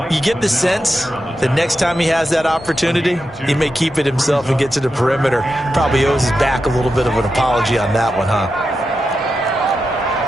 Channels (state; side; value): normal; both; correlation 0.89